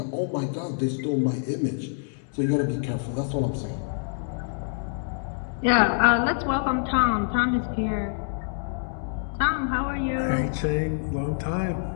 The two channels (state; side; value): silent; right; digital silence